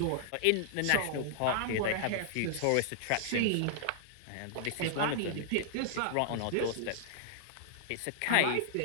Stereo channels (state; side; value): different; both; correlation -0.01